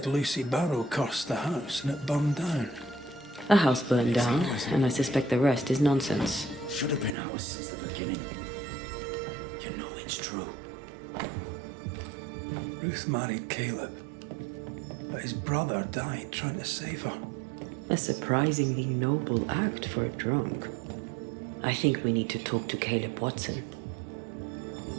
Lucy Barrow cursed the house and it burned down. A house burned down, and I suspect the rest is nonsense. Should have been ours since the beginning. You know it's true. Ruth married Caleb, but his brother died trying to save her. A surprisingly noble act for a drunk. I think we need to talk to Caleb Watson.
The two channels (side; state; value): left; drops out; at 7.2 s